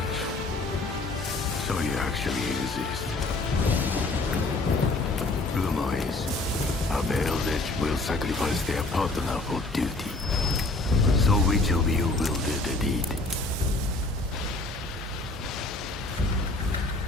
So you actually exist. Rumor is, a veiled edge will sacrifice their partner for duty. So which of you will do the deed?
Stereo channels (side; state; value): right; quieter; 3.0 dB